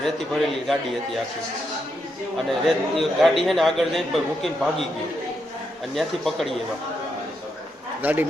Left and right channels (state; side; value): normal; both; correlation 0.81